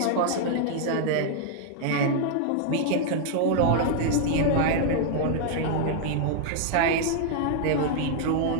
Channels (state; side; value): different; both; correlation -0.01